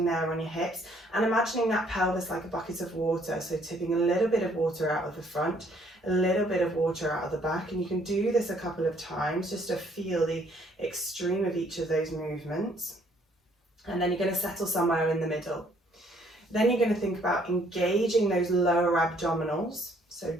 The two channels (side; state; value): both; normal; correlation 0.64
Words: there on your hips, and imagining that pelvis like a bucket of water, so tipping a little bit of water out of the front, a little bit of water out of the back, and you can do this a couple of times just to feel the extreme of each of those movements. And then you're going to settle somewhere in the middle. Then you're going to think about engaging those lower abdominals, so